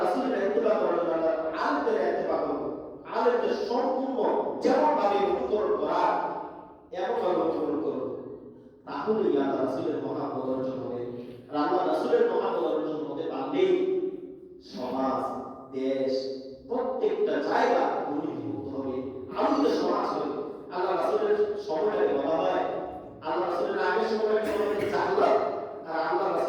রাসূলের ইত্তিবা করার জন্য আলেমদের ইত্তিবা করব, আলেমদের সম্পূর্ণ যেমন ভাবে অনুসরণ করা এমন ভাবে অনুসরণ করব, তাহলেই আল্লাহ রাসূলের মহব্বত অর্জন হবে। আর আল্লাহ রাসূলের মহব্বত অর্জন হতে পারলে সমাজ, দেশ, প্রত্যেকটা জায়গা দুর্নীতিমুক্ত হবে, আলোকিত সমাজ হবে। আল্লাহ রাসূলের সময়টাকে বলা হয়, আল্লাহ রাসূলের আগের সময়টাকে বলা হয় জাহলাত, আর আল্লাহ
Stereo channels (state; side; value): identical; both; correlation 1.00